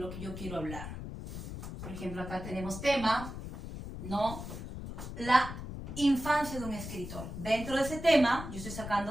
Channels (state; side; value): noise; left; rumble, 8 dB below the sound